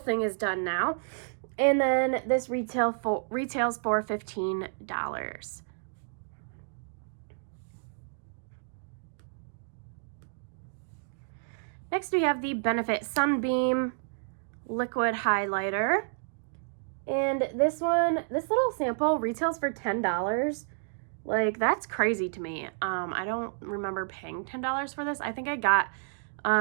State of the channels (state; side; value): silent; left; digital silence